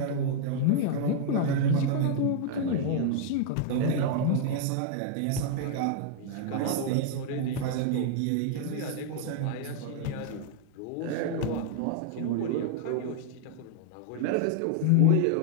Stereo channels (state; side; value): different; both; correlation 0.00